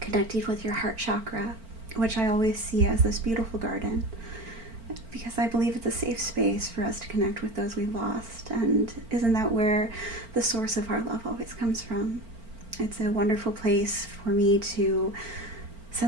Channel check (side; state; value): left; late; 4.4 ms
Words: with your heart chakra, which I always see as this beautiful garden, because I believe it's a safe space for us to connect with those we've lost. And isn't that where the source of our love always comes from? It's a wonderful place for me to